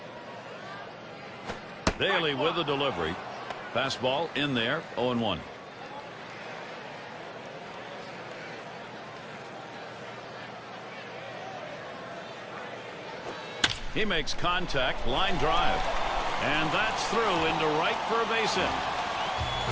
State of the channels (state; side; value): identical; both; correlation 1.00